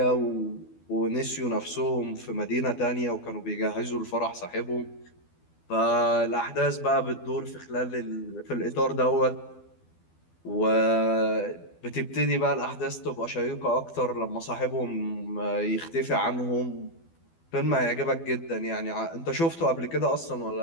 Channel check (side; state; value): right; late; 12 ms